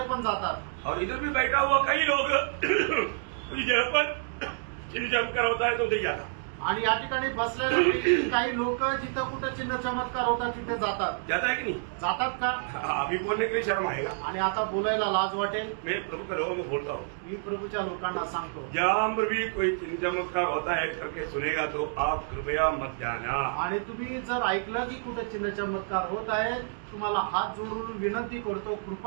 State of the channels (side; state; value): left; silent; digital silence